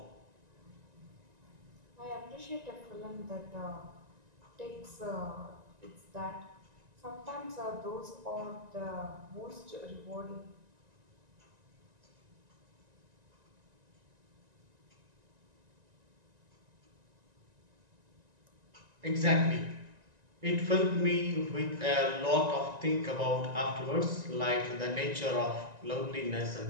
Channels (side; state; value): left; late; 1.9 ms